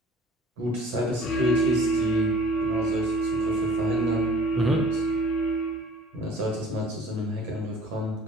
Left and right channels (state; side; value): normal; both; correlation 0.49